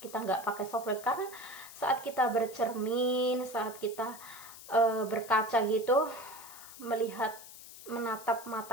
kita nggak pakai softline, karena saat kita bercermin, saat kita berkaca gitu, menatap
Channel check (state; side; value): noise; left; hiss, 16 dB below the sound